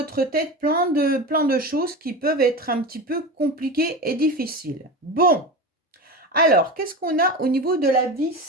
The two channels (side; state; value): both; normal; correlation 0.26